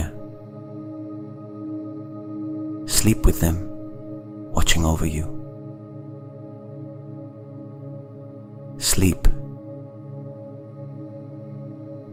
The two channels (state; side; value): identical; both; correlation 1.00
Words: Sleep with them, watching over you. Sleep,